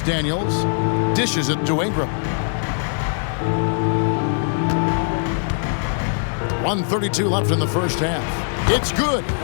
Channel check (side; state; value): right; silent; 65 dB below the other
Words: Daniels. Dishes it to Ingram. 1:32 left in the first half. It's good.